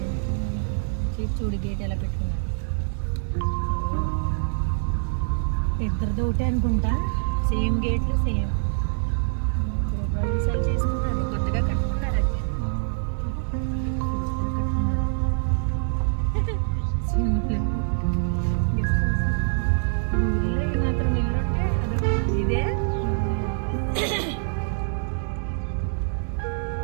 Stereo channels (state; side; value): silent; left; digital silence